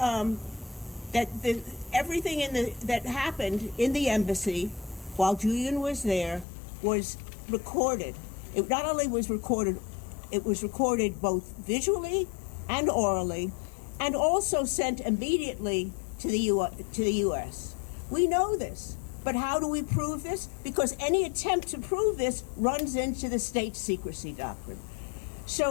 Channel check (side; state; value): right; drops out; at 6.5 s